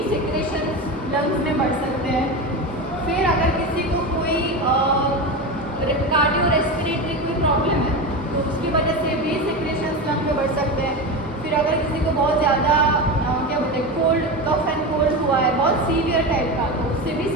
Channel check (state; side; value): normal; both; correlation 0.21